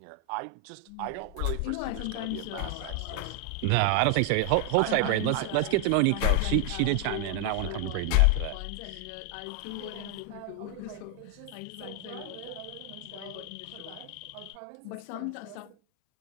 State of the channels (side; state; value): both; different; correlation 0.00